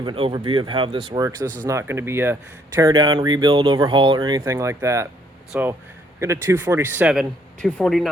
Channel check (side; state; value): both; normal; correlation 0.67